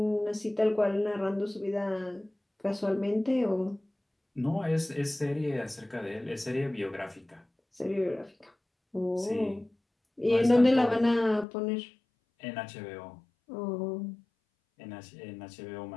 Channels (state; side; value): drops out; right; at 11.5 s